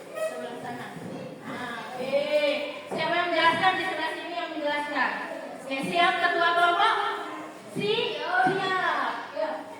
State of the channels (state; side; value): identical; both; correlation 1.00